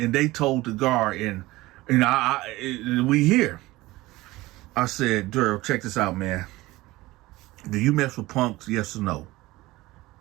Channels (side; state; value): left; quieter; 19.0 dB